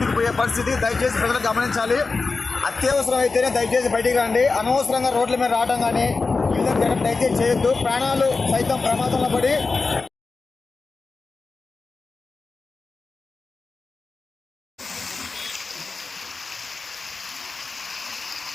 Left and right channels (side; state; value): right; quieter; 4.1 dB